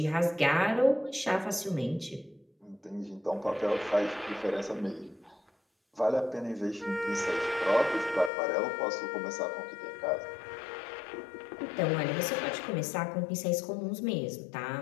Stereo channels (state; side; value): drops out; right; at 8.3 s